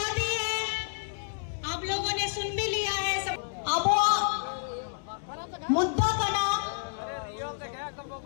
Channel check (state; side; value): silent; right; digital silence